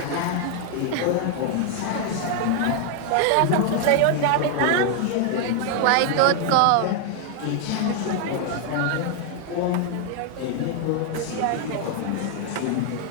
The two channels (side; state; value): both; different; correlation 0.00